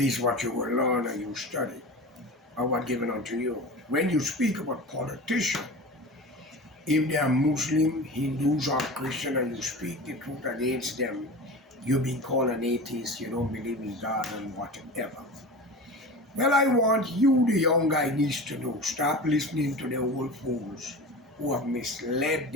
what you will learn and you study or what given unto you. When you speak about politicians, if they are Muslim, Hindus, or Christian, and you speak the truth against them, you be called an atheist, you don't believe in God and whatever. Well, I want you, the young guy, needs to know. Stop listening to the old fools who have misled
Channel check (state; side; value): normal; both; correlation 0.32